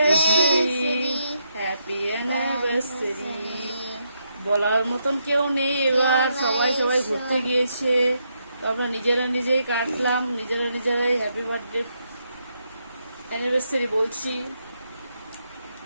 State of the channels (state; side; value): inverted; both; correlation -0.79